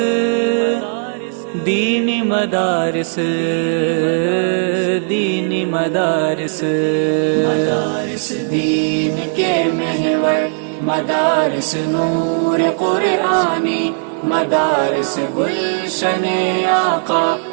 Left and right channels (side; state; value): left; silent; digital silence